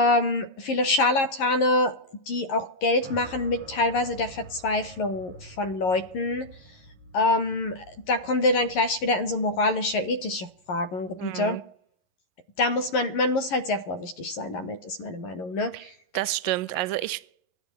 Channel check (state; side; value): late; right; 11 ms